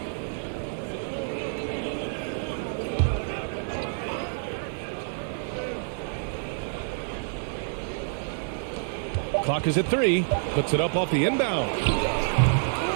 Clock is at 3. Puts it up off the inbound.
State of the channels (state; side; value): silent; left; digital silence